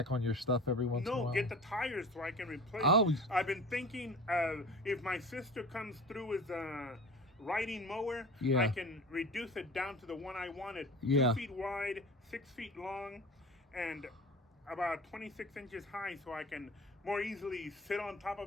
on your stuff every once in a while. No, get the tires so I can replace. Oh. I've been thinking if my sister comes through with a riding mower, I can reduce it down to the one I wanted. 2 feet wide, 6 feet long, and about 26 inches high, so I can more easily sit on top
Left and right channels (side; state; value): both; normal; correlation 0.37